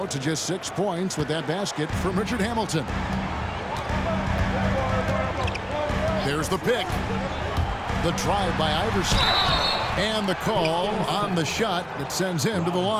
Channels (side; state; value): both; identical; correlation 1.00